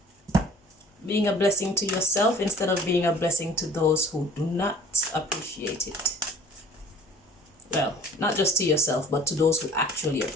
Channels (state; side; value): normal; both; correlation 0.50